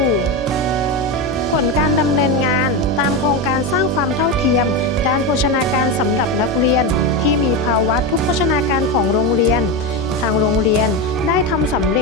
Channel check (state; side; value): normal; both; correlation 0.15